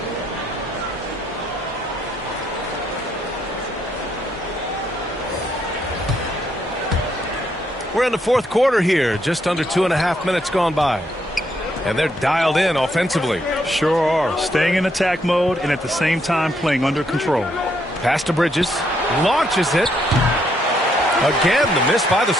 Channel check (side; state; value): both; normal; correlation 0.74